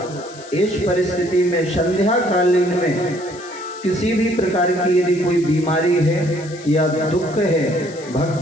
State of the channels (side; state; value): left; noise; hiss, 19 dB below the sound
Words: इस परिस्थिति में संध्या कालीन में किसी भी प्रकार की यदि कोई बीमारी है या दुख है,